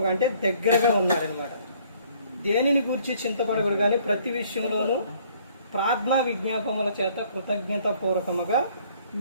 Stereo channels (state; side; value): inverted; both; correlation -0.61